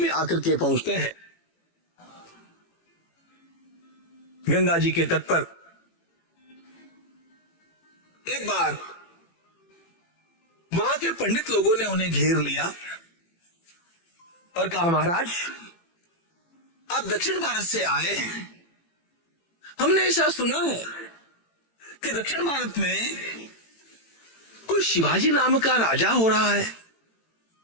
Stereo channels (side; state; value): right; late; 18 ms